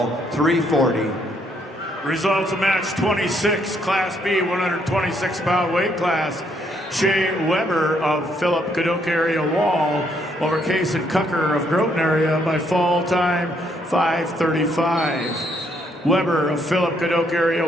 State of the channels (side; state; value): both; normal; correlation 0.71